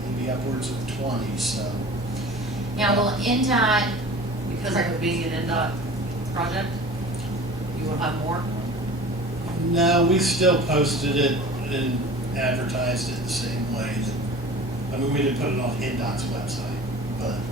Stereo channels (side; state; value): both; normal; correlation 0.41